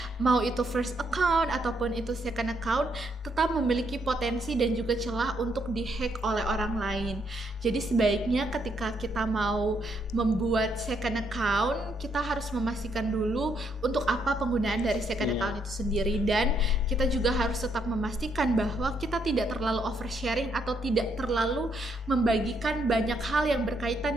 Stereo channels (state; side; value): normal; both; correlation 0.74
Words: mau itu first account ataupun itu second account tetap memiliki potensi dan juga celah untuk dihack oleh orang lain. Jadi sebaiknya ketika kita mau membuat second account, kita harus memastikan dulu untuk apa penggunaan dari second account itu sendiri, dan kita juga harus tetap memastikan bahwa kita tidak terlalu oversharing atau tidak terlalu membagikan banyak hal yang